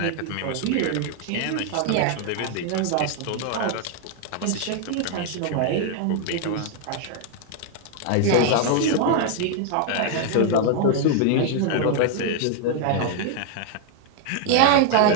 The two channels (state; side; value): different; both; correlation 0.00